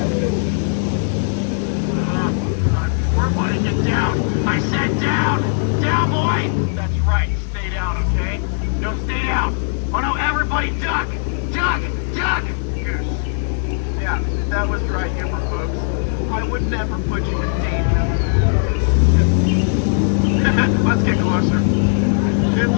Everybody get down. I said down. Down, boy. That's right. Stay down, okay? No, stay down. Oh, no, everybody duck. Duck. Duck. Goose. Yeah, that was dry humor, folks. I would never put you in danger. Let's get closer. It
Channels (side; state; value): right; silent; digital silence